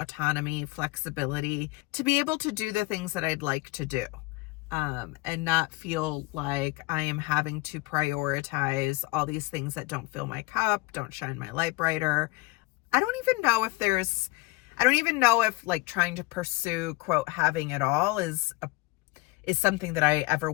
flexibility to be able to do the things that I'd like to do, and not feel like I am having to prioritize all these things that don't fill my cup, don't shine my light brighter. I don't even know if like trying to pursue, quote, having it all is something that I ever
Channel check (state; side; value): quieter; right; 22.8 dB